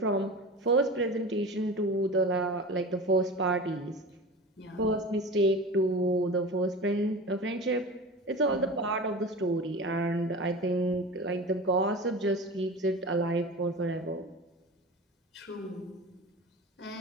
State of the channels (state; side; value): normal; both; correlation 0.32